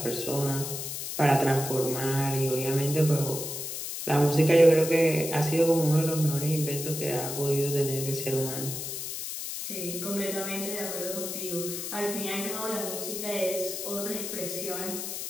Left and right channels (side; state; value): left; noise; hiss, 5 dB below the sound